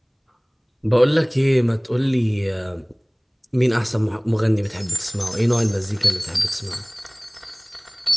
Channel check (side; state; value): both; identical; correlation 1.00